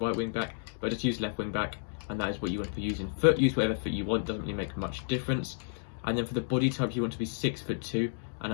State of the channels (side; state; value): right; silent; digital silence